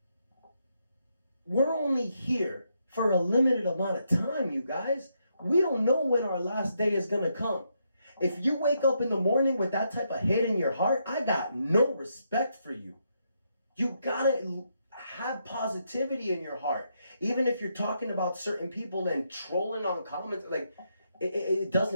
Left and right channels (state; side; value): inverted; both; correlation -0.79